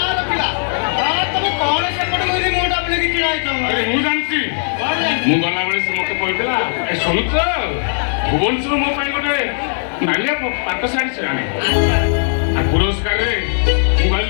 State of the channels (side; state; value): right; silent; digital silence